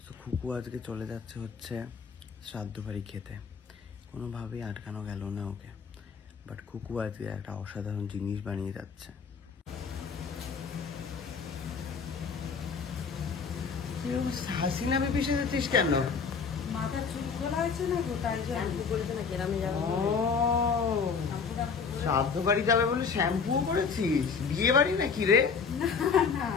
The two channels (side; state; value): right; quieter; 5.6 dB